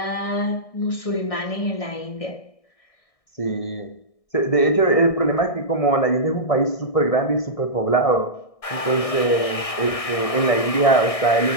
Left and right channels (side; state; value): right; late; 1.6 ms